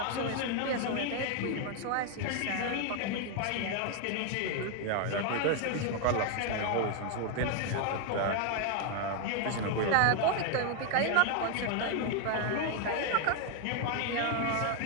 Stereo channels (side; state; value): both; different; correlation 0.01